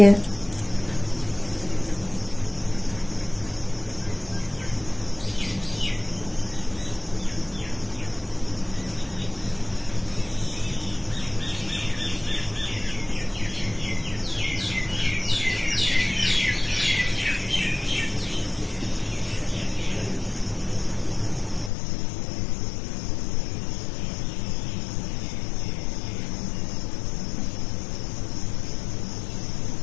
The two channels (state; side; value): drops out; right; at 21.7 s